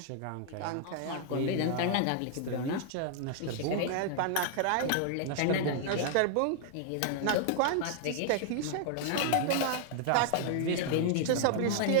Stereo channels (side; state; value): both; different; correlation -0.01